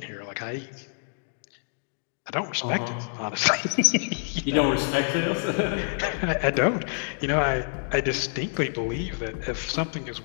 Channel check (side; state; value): right; silent; digital silence